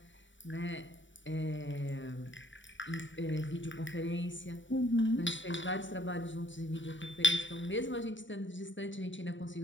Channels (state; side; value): late; right; 0.55 ms